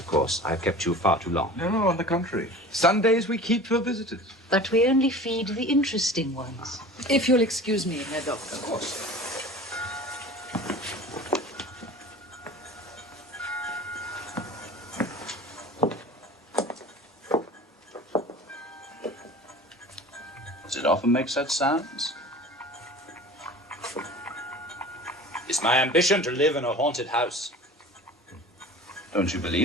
course. I've kept you far too long. No, on the contrary. Sundays we keep for visitors. But we only feed the interesting ones. If you'll excuse me, Herr Doctor. Of course. Does it often make such sounds? It's my ambition to live in a haunted house. Don't you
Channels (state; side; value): normal; both; correlation 0.39